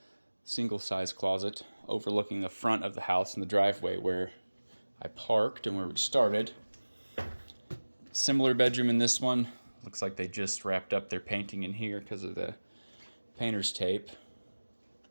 size closet overlooking the front of the house and the driveway where I parked and where we started. Similar bedroom in this one. Looks like they just wrapped up their painting in here because of the painter's tape.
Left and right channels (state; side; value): inverted; both; correlation -1.00